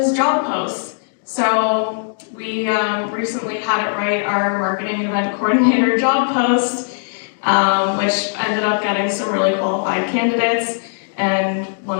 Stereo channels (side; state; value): right; silent; digital silence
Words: job posts. So we recently had it write our marketing event coordinator job post, which ended up getting some really qualified candidates, and